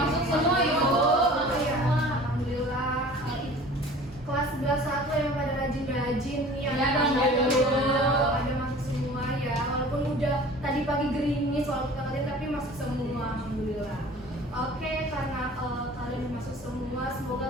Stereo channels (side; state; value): both; normal; correlation 0.44